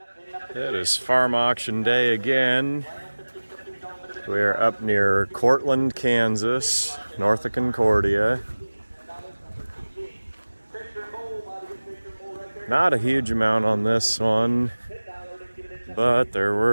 It is farm auction day again. We are up near Cortland, Kansas, north of Concordia. Not a huge amount on this one, but there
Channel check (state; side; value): inverted; both; correlation -1.00